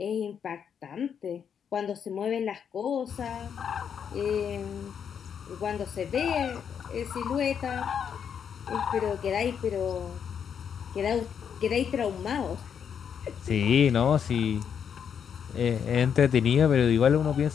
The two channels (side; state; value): right; quieter; 7.7 dB